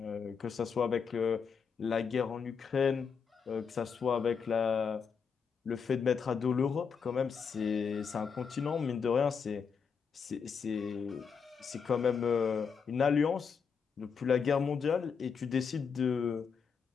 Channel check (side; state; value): right; quieter; 6.2 dB